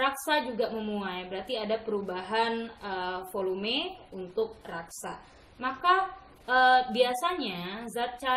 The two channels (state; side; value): identical; both; correlation 1.00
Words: juga memuai, berarti ada perubahan volume untuk raksa. Maka biasanya zat